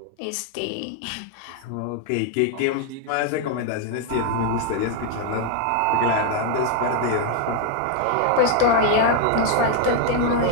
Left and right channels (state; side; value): different; both; correlation 0.00